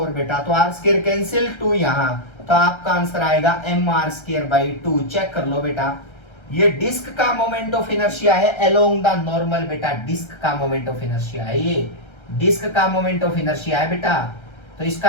बेटा, तो आर स्क्वायर कैंसिल 2 यहां, तो आपका आंसर आएगा m R square by 2। Check कर लो बेटा, ये डिस्क का मोमेंट ऑफ इनर्शिया है अलोंग द नॉर्मल बेटा, डिस्क का मोमेंट ऑफ इनर्शिया है, ये डिस्क का मोमेंट ऑफ इनर्शिया है बेटा। तो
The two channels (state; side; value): late; right; 1.3 ms